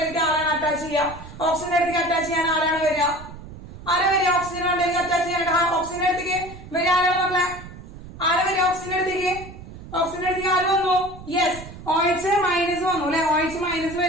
ആരാണ് അറ്റാച്ച് ചെയ്യുക? ഓക്സിജന്റെ അടുത്തേക്ക് അറ്റാച്ച് ചെയ്യാൻ ആരാണ് വരിക? ഓക്സിജൻ മണ്ടയിലേക്ക് അറ്റാച്ച് ചെയ്യാനായിട്ട് ഓക്സിജന്റെ അടുത്തേക്ക് വരിക ആരാണ് മക്കളെ? ആരാ വരിക ഓക്സിജന്റെ അടുത്തേക്ക്? ഓക്സിജന്റെ അടുത്തേക്ക് ആര് വന്നു? യെസ്, OH മൈനസ് വന്നു അല്ലെ? OH മൈനസ്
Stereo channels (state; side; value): noise; right; rumble, 15 dB below the sound